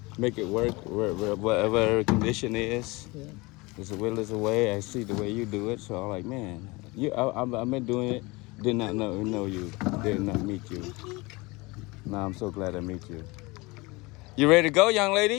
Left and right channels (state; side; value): quieter; right; 24.2 dB